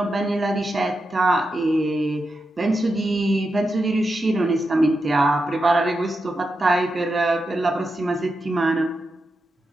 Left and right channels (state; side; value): normal; both; correlation 0.88